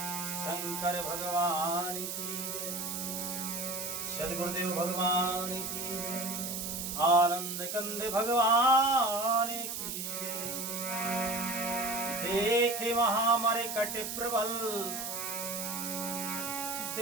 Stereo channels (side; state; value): right; noise; hiss, 4 dB below the sound